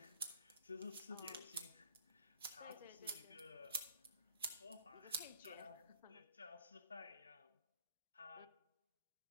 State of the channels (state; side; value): inverted; both; correlation -0.57